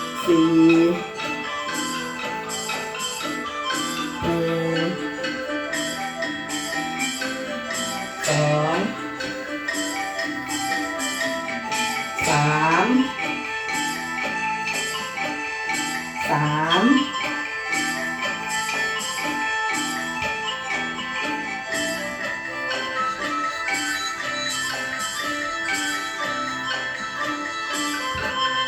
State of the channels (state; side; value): identical; both; correlation 1.00